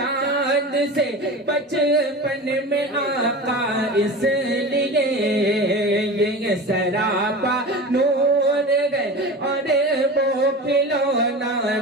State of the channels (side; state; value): both; normal; correlation 0.31